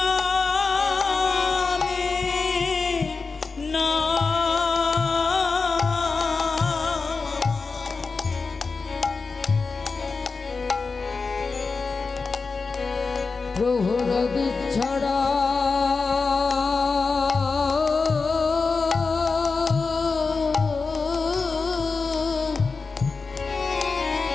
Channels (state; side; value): quieter; right; 4.4 dB